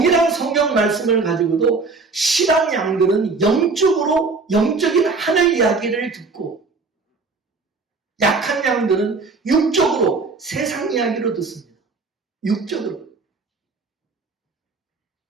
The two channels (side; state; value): left; quieter; 4.1 dB